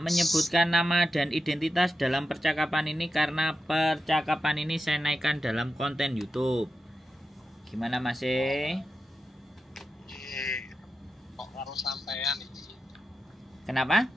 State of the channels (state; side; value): normal; both; correlation 0.89